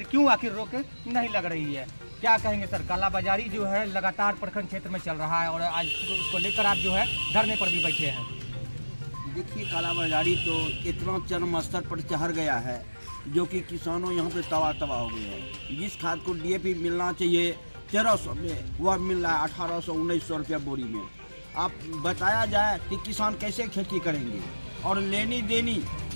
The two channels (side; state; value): both; inverted; correlation -1.00